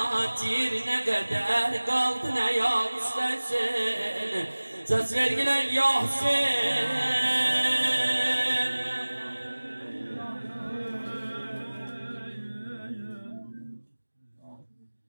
ne kadar kaldı ne ya istersin söz vergiler ya Hüseyin.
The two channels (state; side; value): inverted; both; correlation -1.00